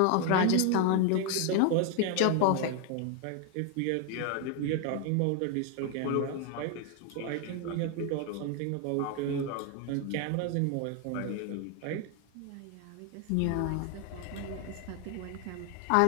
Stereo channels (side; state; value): both; different; correlation 0.01